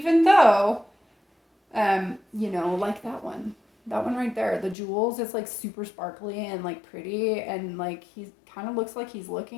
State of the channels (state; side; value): drops out; right; at 4.8 s